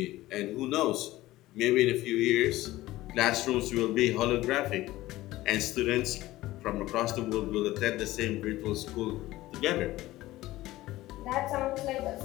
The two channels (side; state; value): right; quieter; 16.9 dB